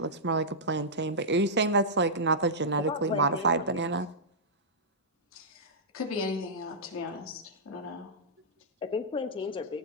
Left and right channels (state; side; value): normal; both; correlation -0.14